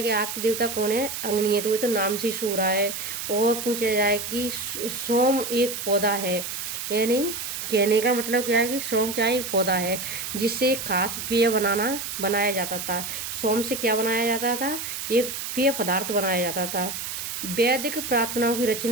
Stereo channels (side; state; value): right; noise; hiss, 5 dB below the sound